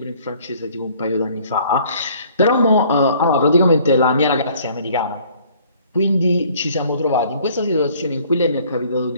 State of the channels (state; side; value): inverted; both; correlation -0.57